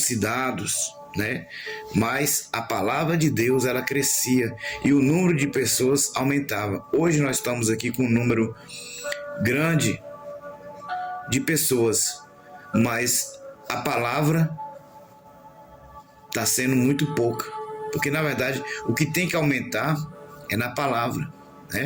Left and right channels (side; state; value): both; identical; correlation 1.00